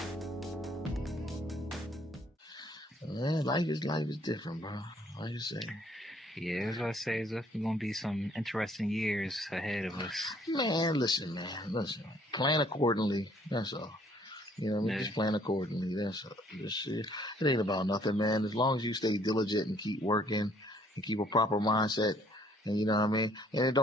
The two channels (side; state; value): both; normal; correlation 0.62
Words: Man, life is different, bro. Like you say. Yeah, that's what I say. There's definitely gonna be some interesting years ahead of us. Man, listen. Plan accordingly. That's all. You know what I mean? Yeah. Just plan accordingly. That's all. It ain't about nothing, man. As long as you stay diligent and keep working and keep a proper mindset, and you know what I mean? And it